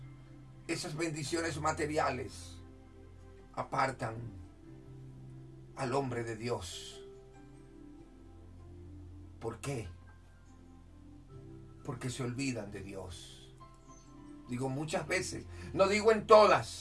esas bendiciones materiales apartan al hombre de Dios. ¿Por qué? Porque se olvidan de Dios. Digo muchas veces, no digo en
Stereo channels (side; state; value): both; identical; correlation 1.00